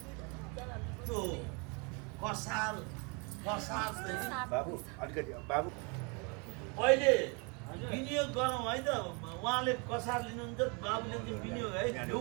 त्यो कसार बाबु अलिकति बाबु पहिले विनियोग गरौँ है त उहाँले कसार लिनुहुन्छ बाबुले चाहिँ विनियोग है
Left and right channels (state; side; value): quieter; left; 32.2 dB